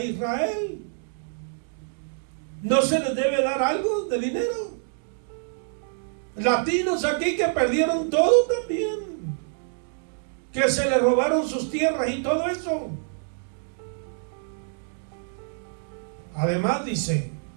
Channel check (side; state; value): left; silent; digital silence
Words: Israel. ¿No se les debe dar algo de dinero? Latinos aquí que perdieron todo también, que se les robaron sus tierras y todo eso. Además dice,